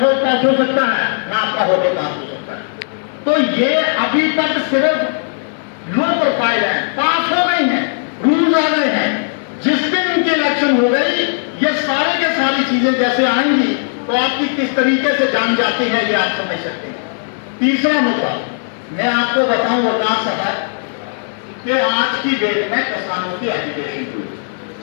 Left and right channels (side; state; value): right; silent; digital silence